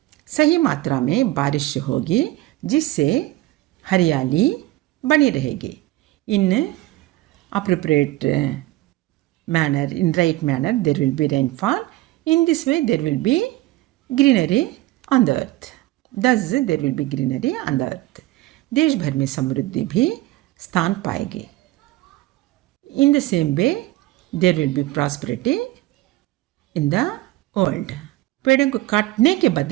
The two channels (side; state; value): left; quieter; 17.5 dB